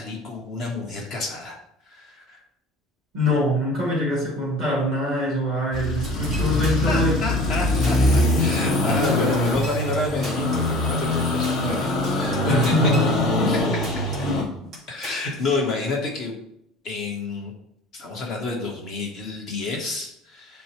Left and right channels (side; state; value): both; normal; correlation 0.42